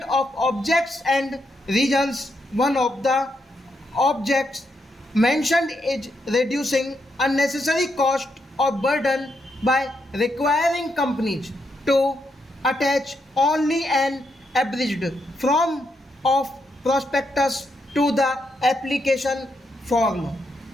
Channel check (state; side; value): normal; both; correlation 0.80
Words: of objects and reasons, one of the objects mentioned is reducing unnecessary cost or burden by requiring companies to attach only an abridged form of prospectus to the application form.